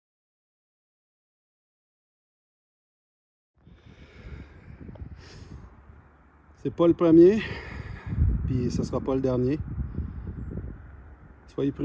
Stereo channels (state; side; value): identical; both; correlation 1.00